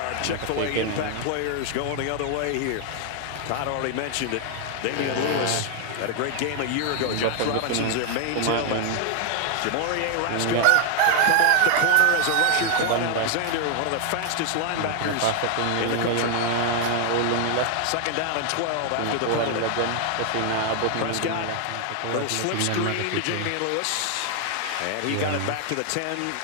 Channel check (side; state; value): both; different; correlation 0.00